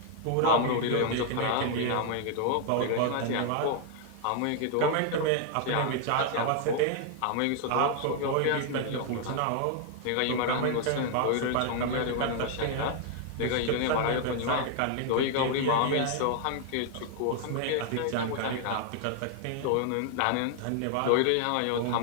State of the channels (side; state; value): both; different; correlation 0.00